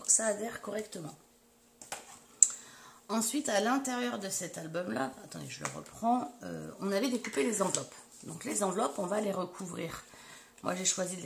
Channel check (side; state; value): both; identical; correlation 1.00